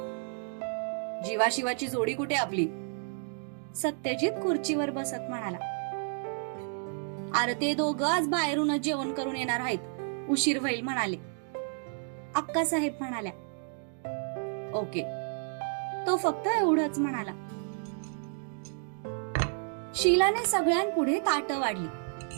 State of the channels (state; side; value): silent; left; 57 dB below the other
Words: जीवाशिवाची जोडी कुठे आपली? सत्यजित खुर्चीवर बसत म्हणाला. अरे ते दोघं आज बाहेरूनच जेवण करून येणार आहेत, उशीर होईल म्हणाले. अक्कासाहेब म्हणाल्या. ओके, तो फक्त एवढंच म्हणाला. शीलाने सगळ्यांपुढे ताटं वाढली.